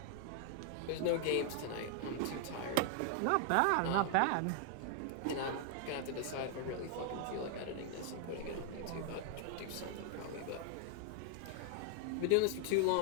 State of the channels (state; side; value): different; both; correlation 0.00